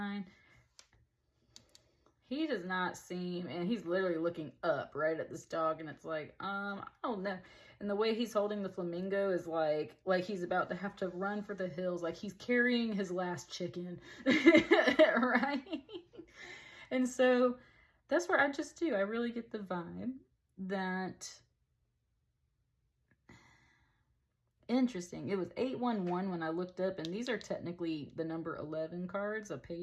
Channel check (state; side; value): identical; both; correlation 1.00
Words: He does not seem, and he's literally looking up right at this dog, and it's like, I don't know. And the way he's holding the flamingo is like he's about to have to run for the hills, like he's carrying his last chicken, right? And so that's where I really get the vibe that, interesting. It was 811 when I looked up, and these are technically the number 11 cards of